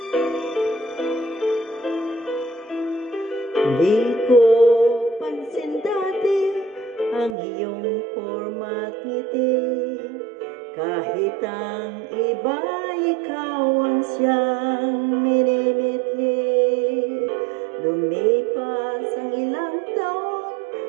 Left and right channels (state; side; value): drops out; left; at 7.4 s